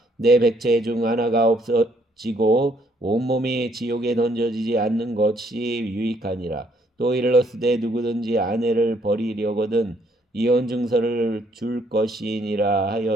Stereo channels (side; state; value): both; normal; correlation 0.68